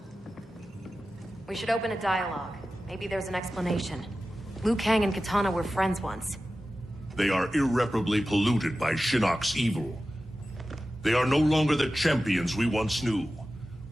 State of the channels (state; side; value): normal; both; correlation 0.94